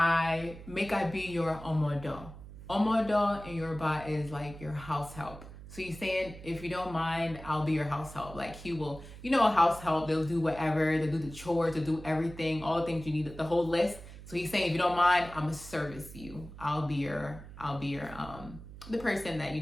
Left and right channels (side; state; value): right; noise; hum, 15 dB below the sound